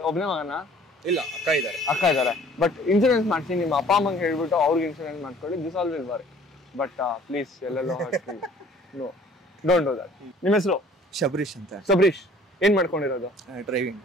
ಒಬ್ಬನೇ ಮಗನ? ಇಲ್ಲ, ಅಕ್ಕ ಇದ್ದಾರೆ. ಬಟ್ ಇನ್ಶೂರೆನ್ಸ್ ಮಾಡಿಸಿ, ನಿಮ್ಮ ಅಪ್ಪ ಅಮ್ಮಂಗೆ ಹೇಳ್ಬಿಟ್ಟು ಅವ್ರಿಗೆ ಇನ್ಶೂರೆನ್ಸ್ ಮಾಡ್ಕೊಳ್ಳಿ. This all will work. But please ಎಲ್ಲೆಲ್ಲೋ ನೋ, ಡೋಂಟ್ ಡೂ ದಟ್. ನಿಮ್ಮ ಹೆಸರು? ಶಬರೀಶ್ ಅಂತ. ಶಬರೀಶ್, ಏನ್ ಮಾಡ್ಕೊಂಡಿರೋದು? ಡ್ರೈವಿಂಗ್.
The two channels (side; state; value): both; normal; correlation 0.53